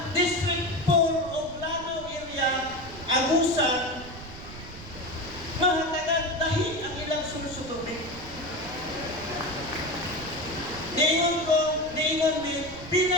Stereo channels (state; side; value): noise; right; rumble, 14 dB below the sound